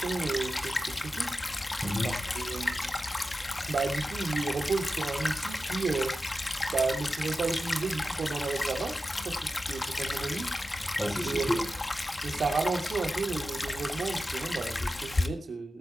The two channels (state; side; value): normal; both; correlation 0.92